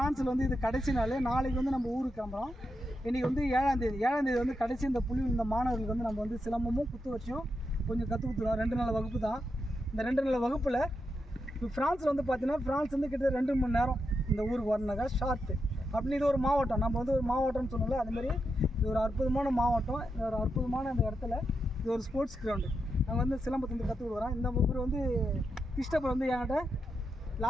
வந்து இது கடைசி நாள். நாளைக்கு வந்து நம்ம ஊருக்கு கிளம்புறோம். இன்றைக்கி வந்து 7ஆம் தேதி வந்து கடைசி இந்த புள்ளியில் இந்த மாணவர்களுக்கு வந்து நம்ம வந்து சிலம்பமும் குத்து வச்சும் கொஞ்சம் கற்றுக் கொடுத்துருவோம். 2 நாள் வகுப்பு தான். இந்த 2 நாள் வகுப்பில் இப்போ ஃப்ரான்ஸில் வந்து பார்த்தீங்கன்னா ஃப்ரான்ஸ் வந்து கிட்டத்தட்ட 2 மணி நேரம் இந்த ஊருக்கு வரணுனாக்கா ஷார்ட்டு அப்படின்னு. இது ஒரு மாவட்டம், நம்ம வந்து ஒரு மாவட்டம்னு சொன்னோம்ல, அதுமாரி இது ஒரு அற்புதமான மாவட்டம். இது ஒரு அற்புதமான அந்த இடத்துல இது ஒரு ஸ்போர்ட்ஸ் கிரவுண்டு. நாங்கள் வந்து சிலம்பத்தை வந்து கற்றுக் கொடுக்குறோம். இந்த ஊர் வந்து கிருஷ்ணப்பர் வந்து என்கிட்ட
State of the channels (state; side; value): normal; both; correlation 0.85